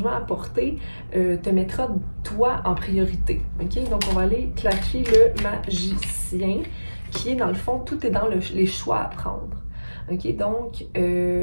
apporté, te mettra toi en priorité. OK? Donc, on va aller clarifier le magicien, qui est dans le fond, tout est dans les choix à prendre. OK? Donc,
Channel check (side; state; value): both; inverted; correlation -1.00